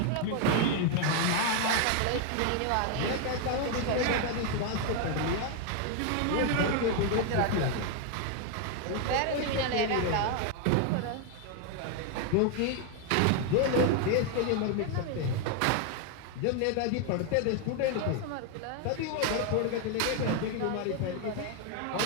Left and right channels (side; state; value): both; different; correlation 0.01